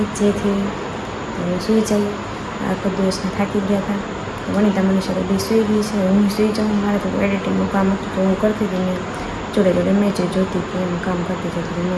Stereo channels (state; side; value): identical; both; correlation 1.00